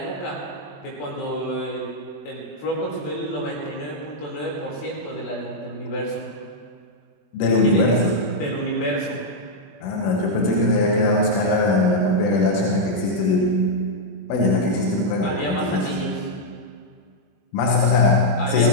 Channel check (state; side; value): late; right; 20 ms